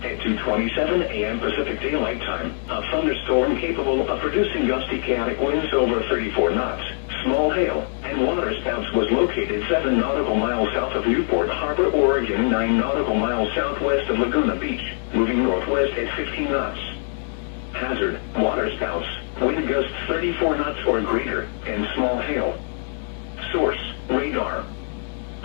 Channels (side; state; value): right; silent; 63 dB below the other